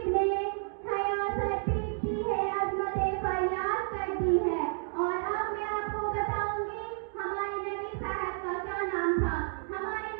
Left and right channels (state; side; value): silent; left; 57 dB below the other